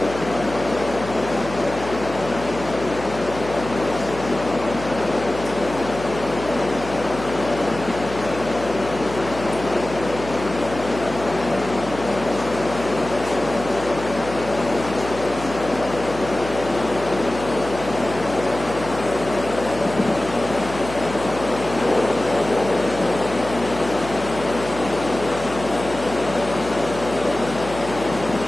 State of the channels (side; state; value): left; noise; hum, 11 dB below the sound